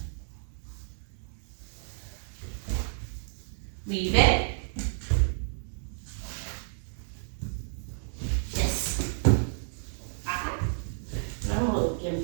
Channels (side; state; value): left; silent; digital silence